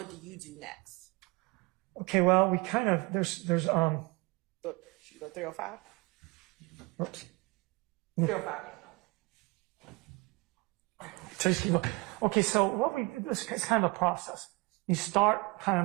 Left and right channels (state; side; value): quieter; left; 25.8 dB